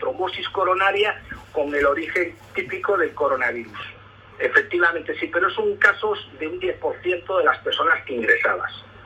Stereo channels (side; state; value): both; identical; correlation 1.00